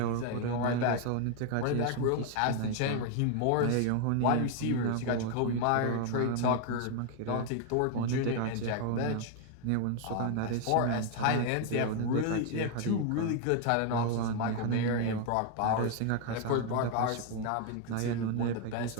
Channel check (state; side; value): different; both; correlation 0.00